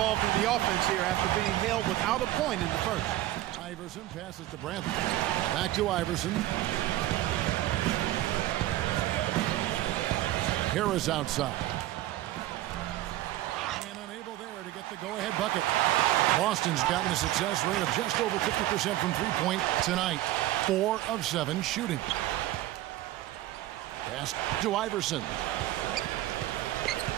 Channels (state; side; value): quieter; left; 15.2 dB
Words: in the offense here after being held without a point in the first. Iverson passes to Brantley. Back to Iverson. Harris outside. And unable there to get the go-ahead bucket. Boston's gotten a success rate of just over 50% from three-point tonight. 4 of 7 shooting. Pass to Iverson.